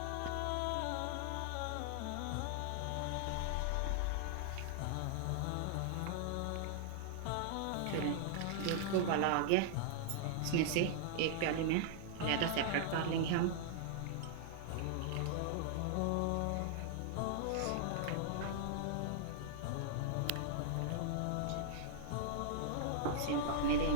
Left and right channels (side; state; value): both; different; correlation -0.01